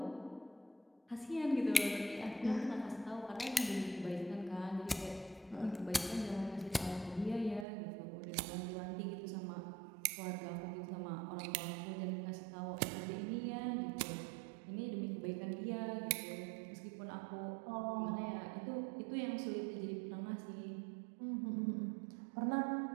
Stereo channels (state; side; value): drops out; left; at 7.7 s